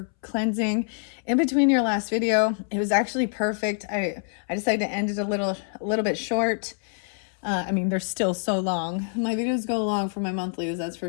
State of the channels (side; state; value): right; silent; 61 dB below the other